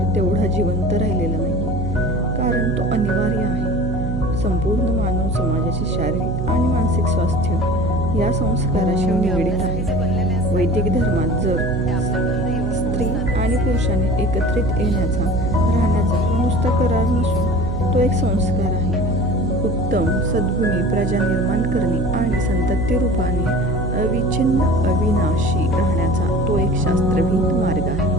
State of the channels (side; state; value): right; noise; hum, 3 dB below the sound